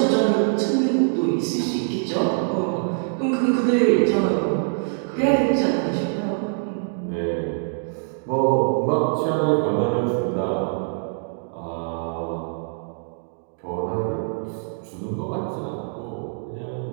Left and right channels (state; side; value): silent; left; digital silence